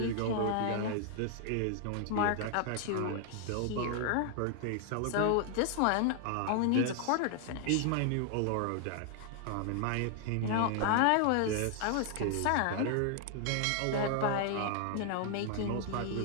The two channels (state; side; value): different; both; correlation 0.00